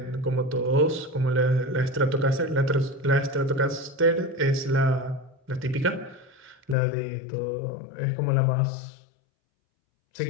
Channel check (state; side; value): drops out; right; at 6.8 s